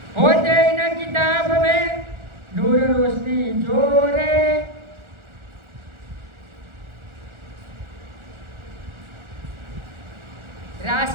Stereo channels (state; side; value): late; left; 1.4 ms